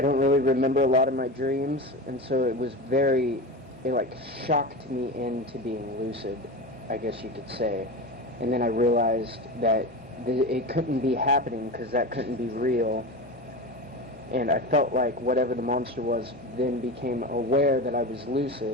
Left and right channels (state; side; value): normal; both; correlation 0.25